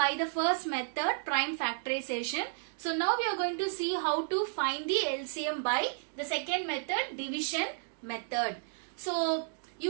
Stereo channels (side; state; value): left; silent; digital silence